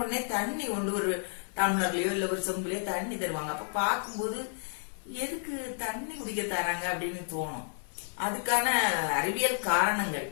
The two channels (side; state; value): right; silent; 57 dB below the other